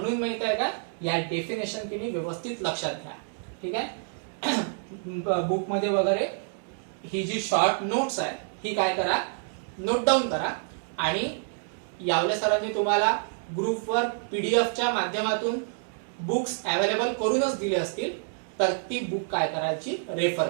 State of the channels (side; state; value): left; silent; digital silence